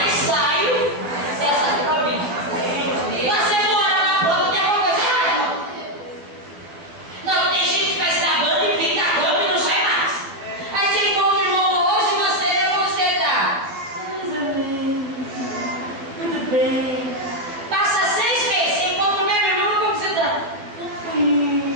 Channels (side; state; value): left; late; 12 ms